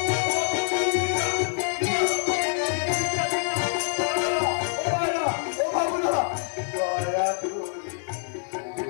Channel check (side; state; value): right; silent; 61 dB below the other